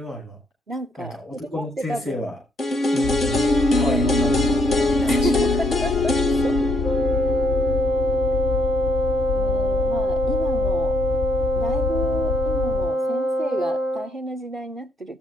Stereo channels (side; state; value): both; normal; correlation 0.72